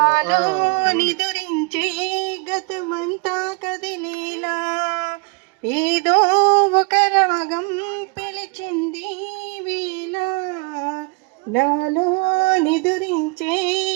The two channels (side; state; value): left; quieter; 31.3 dB